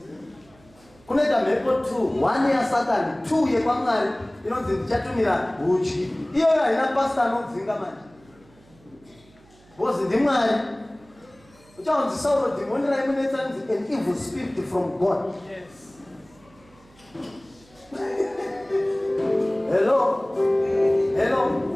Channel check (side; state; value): right; noise; hum, 28 dB below the sound